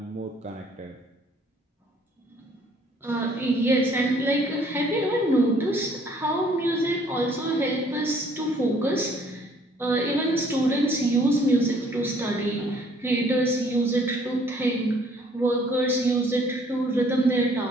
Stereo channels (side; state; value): both; normal; correlation 0.60